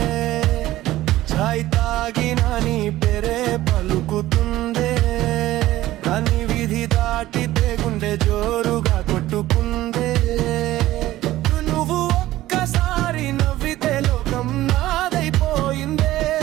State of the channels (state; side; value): quieter; left; 15.7 dB